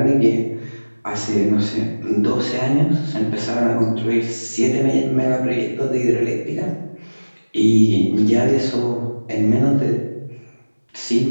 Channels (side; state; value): both; inverted; correlation -1.00